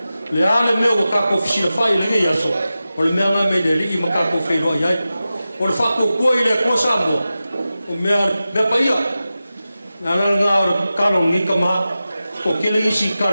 Le ale meo ka ko fisia fai le ngai aso. o le mea ngai me le li i makako whenua iai. O le whako kua i le Atua Samoa, o mea paia. Nā ngā o le karo ngi ka maha, o kele isi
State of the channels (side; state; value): both; inverted; correlation -0.94